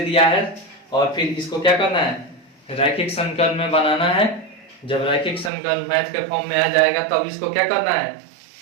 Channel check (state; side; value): drops out; left; at 5.5 s